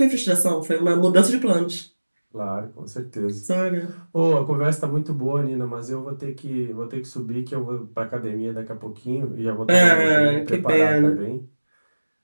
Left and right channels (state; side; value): inverted; both; correlation -1.00